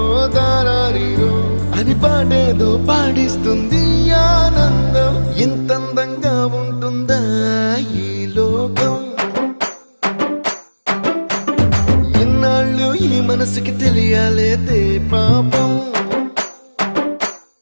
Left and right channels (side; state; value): both; inverted; correlation -1.00